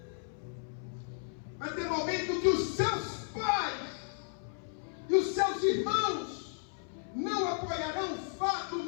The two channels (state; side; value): silent; right; 55 dB below the other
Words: Vai ter momento que os seus pais e os seus irmãos não apoiarão o fato,